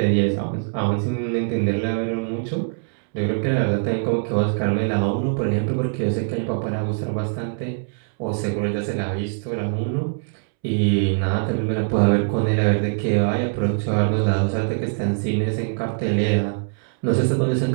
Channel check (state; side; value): silent; left; 64 dB below the other